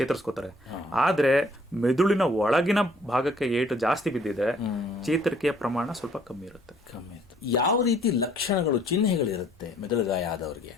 ಆದ್ರೆ ಮೆದುಳಿನ ಒಳಗಿನ ಭಾಗಕ್ಕೆ ಏಟು ಜಾಸ್ತಿ ಬಿದ್ದಿದ್ರೆ ಚೇತರಿಕೆಯ ಪ್ರಮಾಣ ಸ್ವಲ್ಪ ಕಮ್ಮಿ ಇರುತ್ತೆ. ಯಾವ ರೀತಿ ಲಕ್ಷಣಗಳು, ಚಿಹ್ನೆಗಳಿರುತ್ತೆ ಮೆದುಳು ಗಾಯ ಆದವರಿಗೆ?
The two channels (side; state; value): both; normal; correlation 0.60